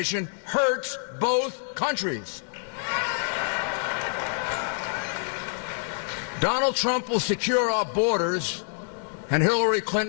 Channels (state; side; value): silent; right; digital silence